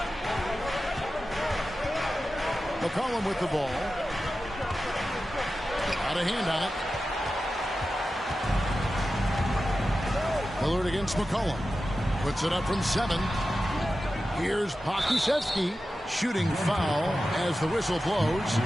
McCollum with the ball. Got a hand on it. Lillard against McCollum. Puts it up from 7. Here's Pokusevski. Shooting foul as the whistle blows.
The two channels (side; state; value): both; normal; correlation 0.93